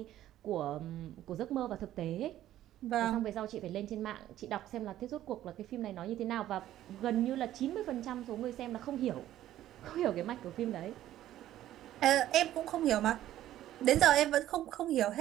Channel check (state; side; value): quieter; left; 13.1 dB